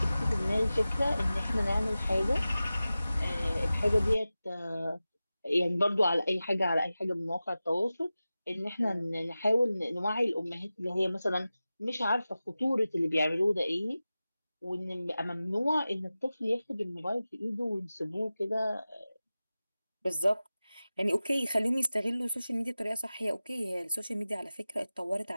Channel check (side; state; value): both; inverted; correlation -0.95